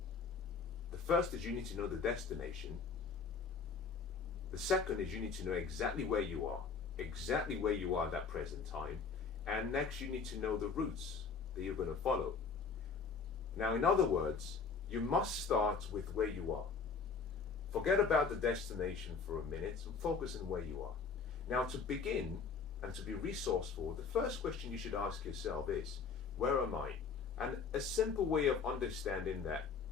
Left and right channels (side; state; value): right; quieter; 5.3 dB